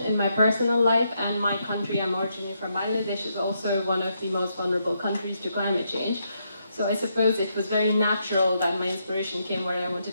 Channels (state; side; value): inverted; both; correlation -0.79